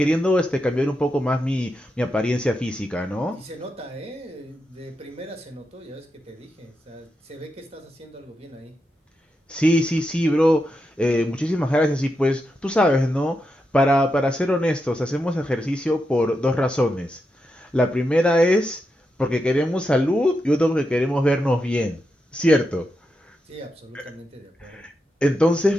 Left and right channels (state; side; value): normal; both; correlation 0.86